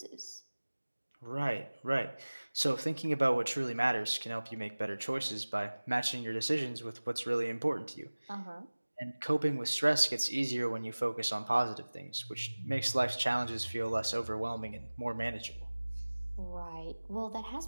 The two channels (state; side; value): inverted; both; correlation -1.00